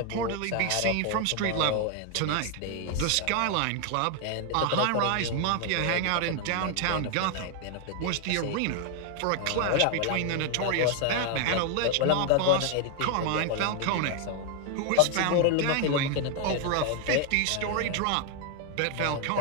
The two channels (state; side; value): different; both; correlation 0.00